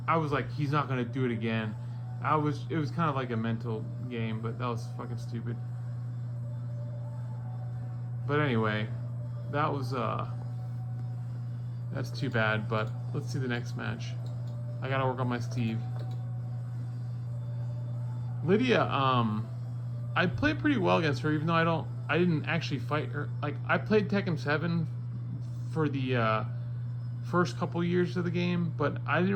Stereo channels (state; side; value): identical; both; correlation 1.00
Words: like, he's not gonna do it again. It was kind of like a mental game, but that was fucking stupid. But anyway, that's too bad, but let's see the next match. I gotta work on my Steve. Lydia, I played pretty well against her, even though I didn't actually fight her. Like, I played Tekken 7 for the first couple years of the game, but I didn't